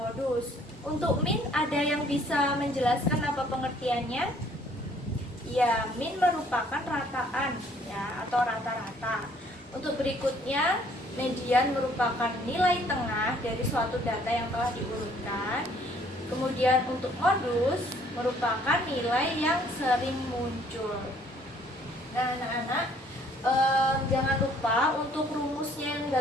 modus. Untuk min ada yang bisa menjelaskan apa pengertiannya? Ya, min merupakan rataan ya atau rata-rata. Untuk berikutnya, median merupakan nilai tengah dari suatu data yang telah diurutkan. Kemudian untuk modus merupakan nilai yang sering muncul. Nah, anak-anak, jangan lupa untuk rumusnya yang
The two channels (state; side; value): normal; both; correlation 0.61